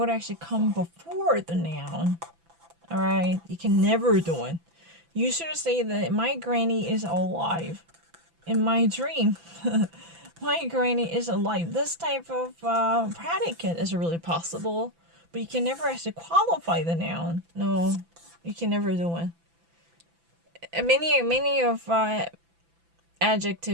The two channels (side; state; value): left; late; 6.0 ms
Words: actually come before the noun. Alright? You can never do it. You should say that my granny is alive. In my dream, my granny is alive. This type of predicate is really possible, but you can never actually qualify the noun. No, you can never do it. Many of